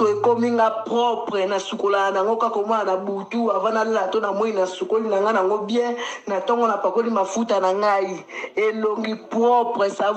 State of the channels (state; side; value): identical; both; correlation 1.00